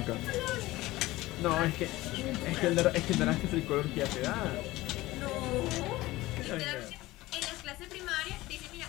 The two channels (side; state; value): right; quieter; 18.5 dB